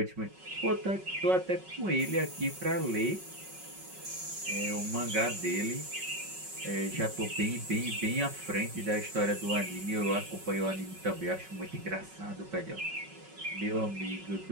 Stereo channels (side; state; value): left; late; 5.4 ms